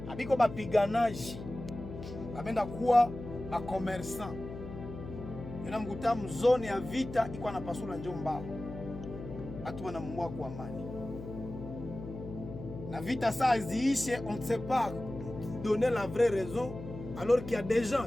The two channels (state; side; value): noise; left; hum, 11 dB below the sound